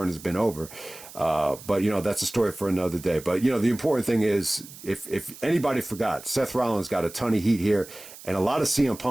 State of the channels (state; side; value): noise; right; hiss, 17 dB below the sound